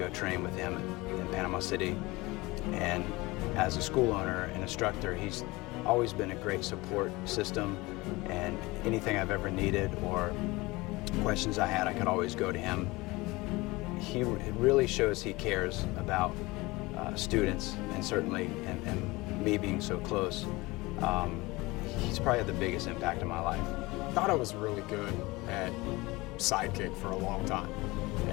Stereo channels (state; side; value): quieter; right; 22.2 dB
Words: train with him in Panama City. And as a school owner and instructor, he's always been a great support system, and anything I've ever needed or questions I had, I could always go to him. It really shows he cares about students, and certainly, and me being so close, he's probably had the biggest impact in my life. I thought I was really good at sidekick for a long time,